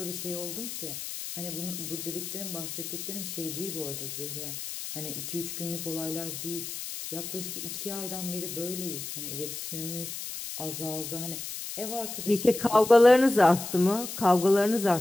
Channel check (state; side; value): noise; left; hiss, 7 dB below the sound